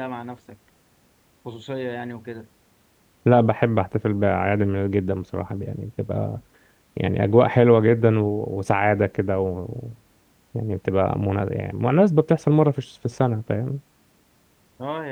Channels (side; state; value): both; identical; correlation 1.00